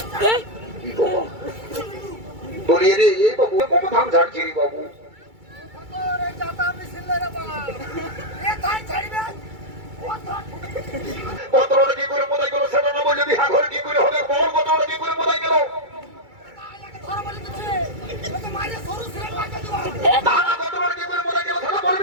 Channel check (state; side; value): late; left; 2.3 ms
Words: কি বাবা বলি রে এই বাবু কোন ধান ঝাড়ছি রে বাবু रे जाता मिसिल रे बा ए थाई छाड़बे কতটা কি করে মোদাই গেল সেটা না বললে বিহা ঘরে কি করে হবে বল কতটা কি করে মোদাই গেল ধর বলি দিছে ও তো মারে সরু সিরে পাকে দিবা না না কতটা কি করে মোদাই গেল সেটা